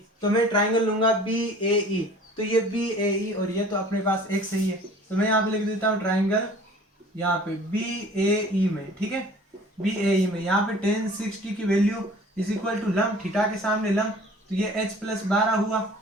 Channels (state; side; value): normal; both; correlation 0.48